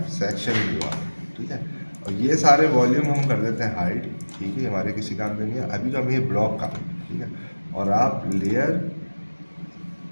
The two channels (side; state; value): both; inverted; correlation -1.00